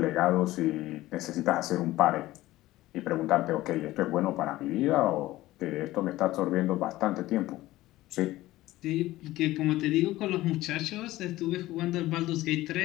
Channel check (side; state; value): right; quieter; 16.8 dB